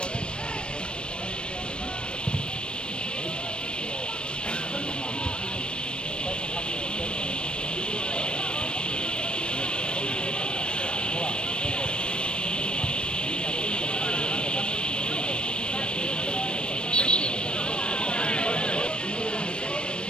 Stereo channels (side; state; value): right; late; 0.055 ms